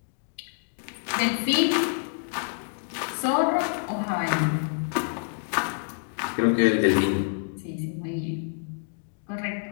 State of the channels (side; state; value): right; silent; 60 dB below the other